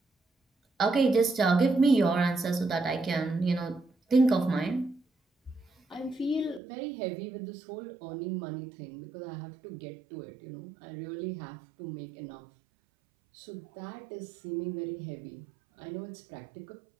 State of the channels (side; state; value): left; drops out; at 6.6 s